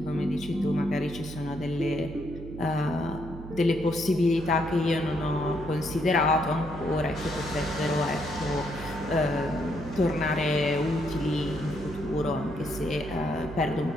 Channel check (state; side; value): noise; right; hum, 12 dB below the sound